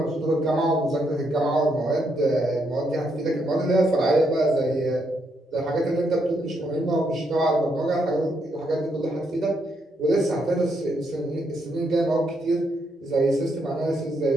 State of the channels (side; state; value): both; normal; correlation 0.77